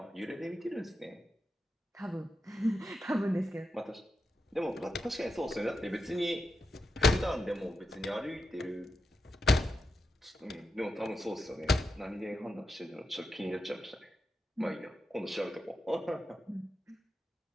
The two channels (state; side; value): normal; both; correlation 0.87